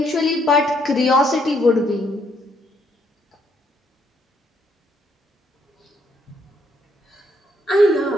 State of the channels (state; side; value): normal; both; correlation 0.71